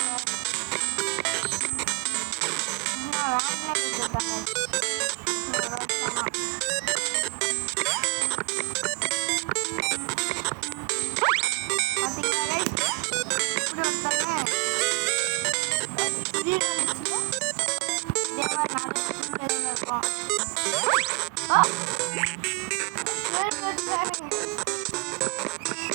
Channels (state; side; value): quieter; left; 30.5 dB